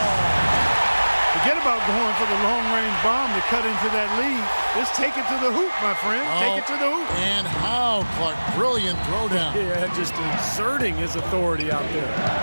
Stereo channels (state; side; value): inverted; both; correlation -1.00